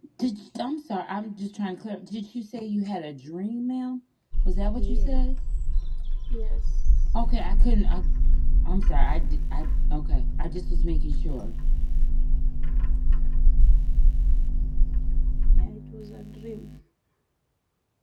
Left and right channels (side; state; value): both; identical; correlation 1.00